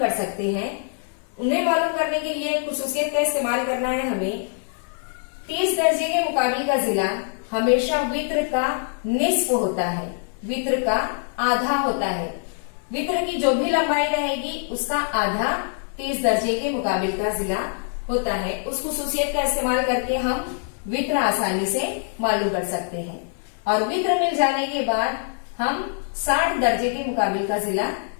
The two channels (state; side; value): silent; right; 63 dB below the other